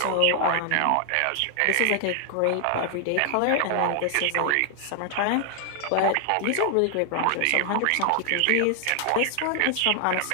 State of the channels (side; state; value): both; different; correlation 0.00